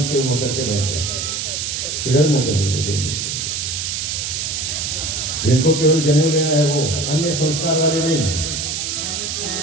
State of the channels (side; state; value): right; noise; hiss, 2 dB below the sound